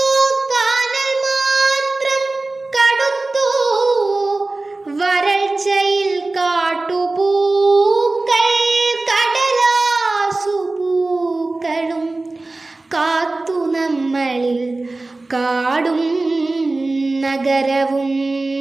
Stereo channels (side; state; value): left; quieter; 3.2 dB